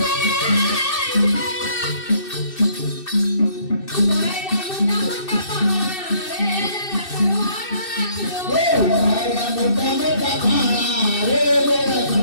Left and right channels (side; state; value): right; late; 2.6 ms